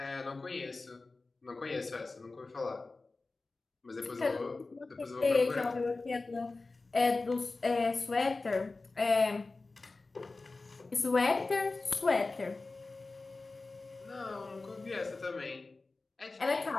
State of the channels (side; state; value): right; quieter; 3.6 dB